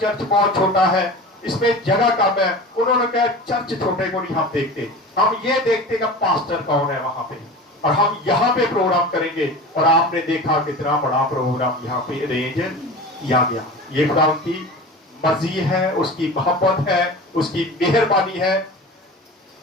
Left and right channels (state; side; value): normal; both; correlation 0.34